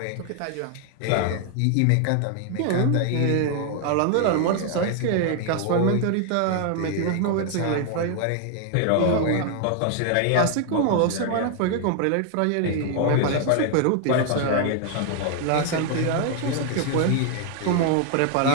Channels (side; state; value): both; different; correlation 0.00